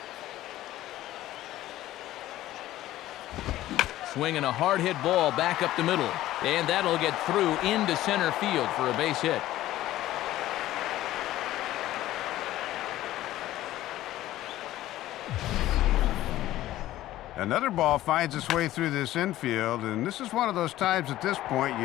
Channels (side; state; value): right; quieter; 14.8 dB